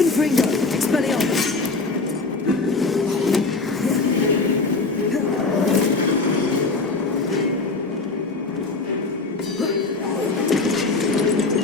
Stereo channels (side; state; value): right; quieter; 3.7 dB